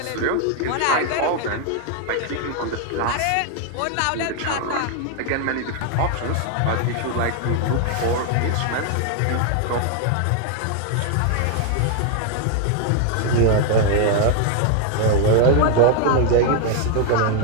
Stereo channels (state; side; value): different; both; correlation 0.00